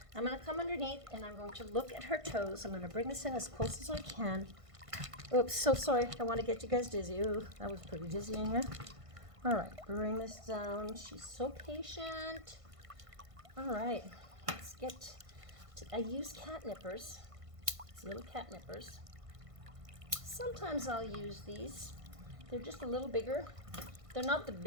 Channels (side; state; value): left; late; 1.5 ms